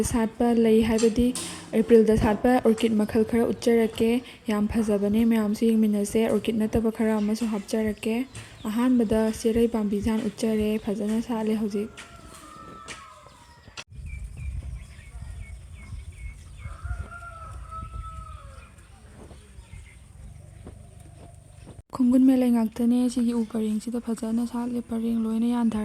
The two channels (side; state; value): both; identical; correlation 1.00